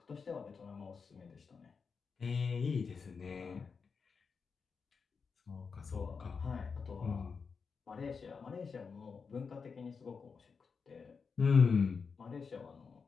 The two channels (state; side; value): quieter; right; 5.4 dB